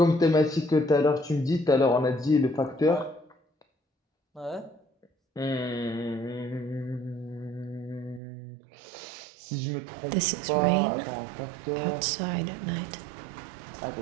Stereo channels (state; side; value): drops out; left; at 8.2 s